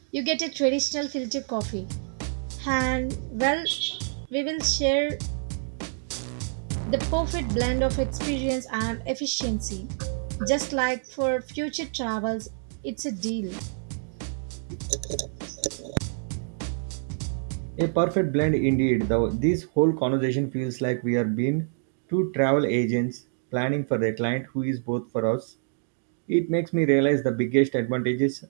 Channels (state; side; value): silent; left; digital silence